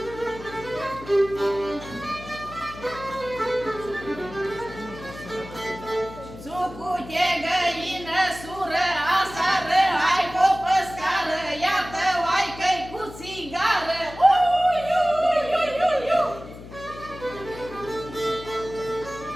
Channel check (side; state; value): left; noise; hum, 15 dB below the sound